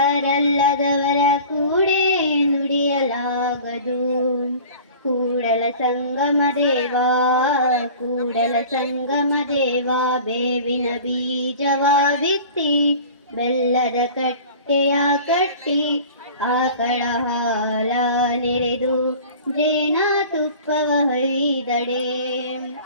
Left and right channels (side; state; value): both; inverted; correlation -0.42